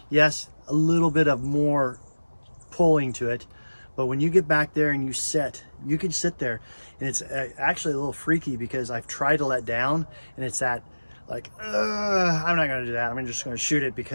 Yes, a little bit of more pulling to it, but when you get back there and you can sit there, and it's actually a little freaky because I've tried to let down, and it's that like, I'm not gonna do that. I'm just gonna shoot it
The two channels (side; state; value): both; inverted; correlation -1.00